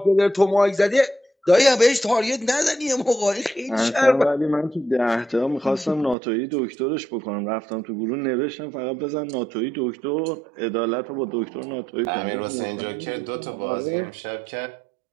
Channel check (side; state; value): left; drops out; at 6.2 s